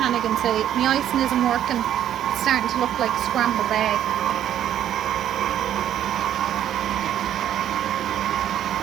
and say, my icing isn't working, it's starting to look like scrambled egg.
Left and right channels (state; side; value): quieter; left; 10.8 dB